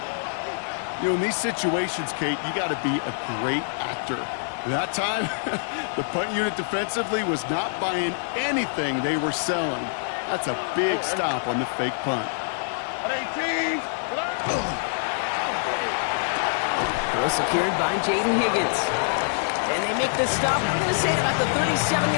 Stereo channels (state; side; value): silent; right; digital silence